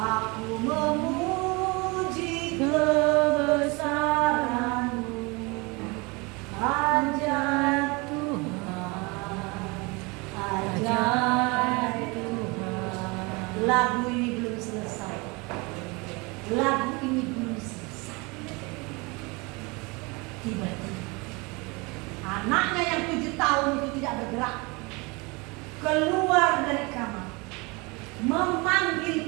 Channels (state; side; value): quieter; left; 27.1 dB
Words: memuji kebesaran-Mu, ajaib Tuhan, ajaib Tuhan. Lagu ini belum selesai. Lagu ini belum selesai. Tiba-tiba anaknya yang 7 tahun itu tidak bergerak, keluar dari kamar,